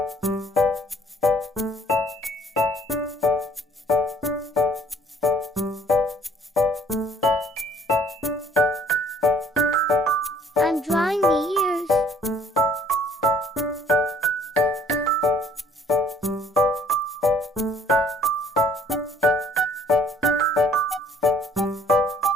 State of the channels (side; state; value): both; normal; correlation 0.59